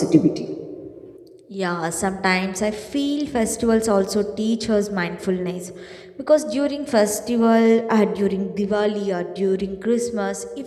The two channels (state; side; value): identical; both; correlation 1.00